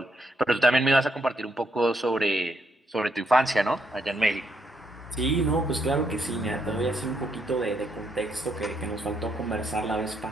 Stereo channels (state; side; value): normal; both; correlation 0.77